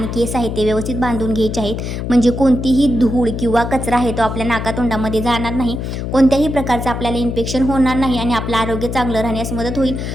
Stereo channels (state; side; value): noise; left; hum, 4 dB below the sound